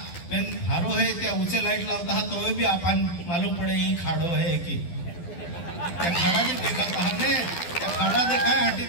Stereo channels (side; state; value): right; late; 12 ms